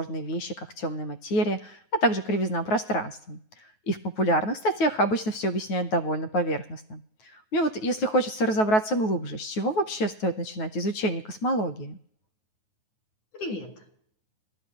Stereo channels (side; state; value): right; late; 9.4 ms